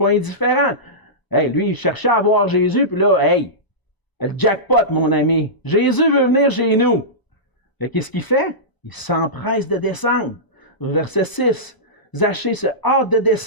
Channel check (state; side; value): late; right; 1.0 ms